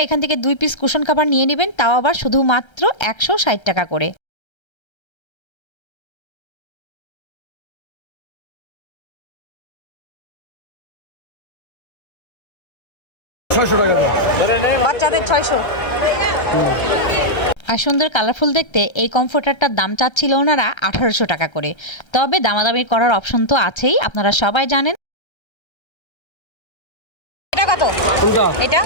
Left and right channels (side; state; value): right; late; 1.3 ms